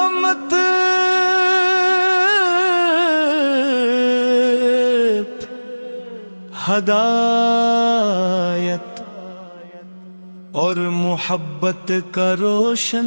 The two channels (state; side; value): inverted; both; correlation -1.00